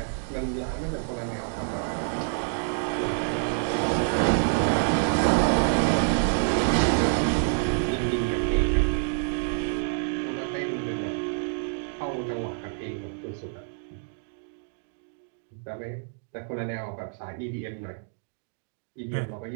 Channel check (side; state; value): left; silent; digital silence